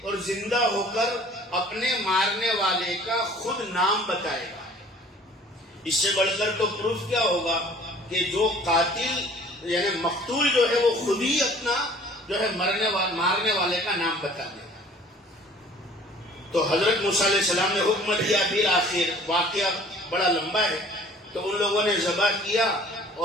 اور زندہ ہو کر اپنے مارنے والے کا خود نام بتائے گا۔ اس سے بڑھ کر تو پروف کیا ہوگا کہ جو قاتل یعنی مقتول جو ہے وہ خود ہی اپنا جو ہے مارنے والے کا نام بتا دے گا۔ تو حضرت موسیٰ علیہ السلام نے حکم دیا، پھر آخر واقعہ بڑا لمبا ہے، تو ان لوگوں نے ذبح کیا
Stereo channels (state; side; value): normal; both; correlation 0.51